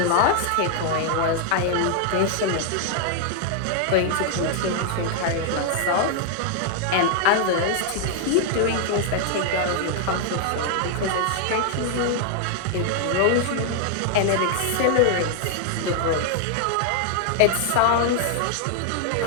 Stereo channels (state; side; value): different; both; correlation 0.00